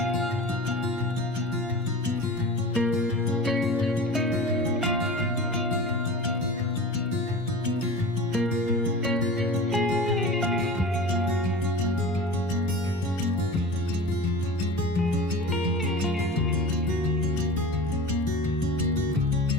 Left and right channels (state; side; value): normal; both; correlation 0.35